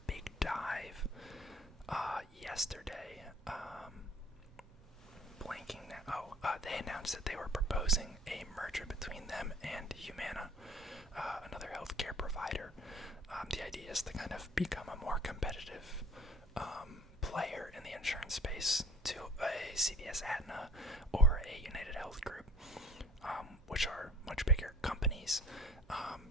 big dive yesterday. Blanking now. They announced that they were proposing a merger between them and Humana, another healthcare provider. The idea is to kind of become a more competitive player in the insurance space to a CVS Aetna or a United Health Group, which are much bigger companies.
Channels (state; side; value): normal; both; correlation 0.51